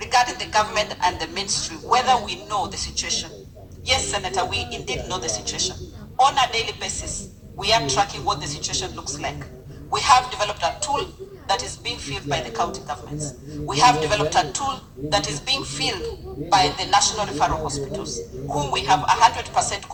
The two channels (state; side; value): identical; both; correlation 1.00